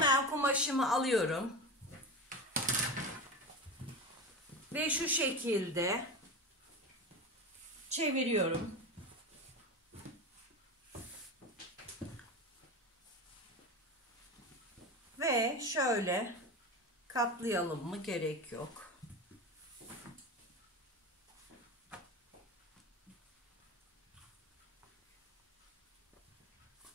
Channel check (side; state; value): both; normal; correlation 0.25